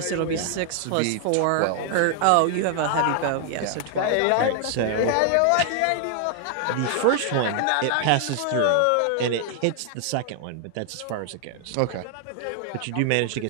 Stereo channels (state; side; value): different; both; correlation 0.00